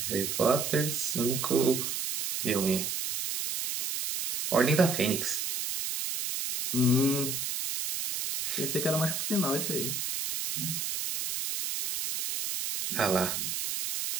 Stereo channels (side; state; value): right; noise; hiss, 2 dB below the sound